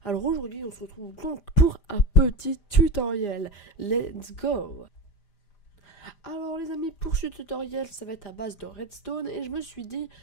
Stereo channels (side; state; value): right; late; 5.0 ms